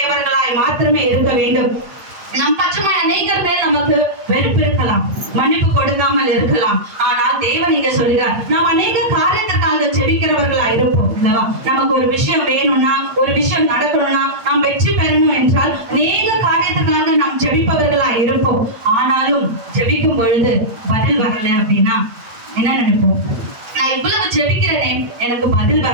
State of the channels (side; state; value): left; late; 8.4 ms